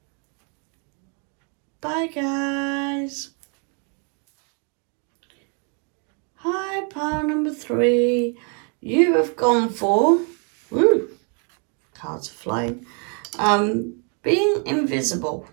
Bye guys. Hi, pile number 3. You have gone for, woo, cards are flying, being invisible.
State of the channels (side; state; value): left; quieter; 38.5 dB